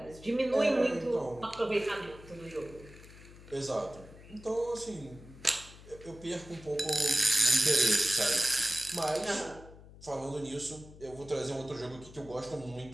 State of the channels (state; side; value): noise; left; hum, 19 dB below the sound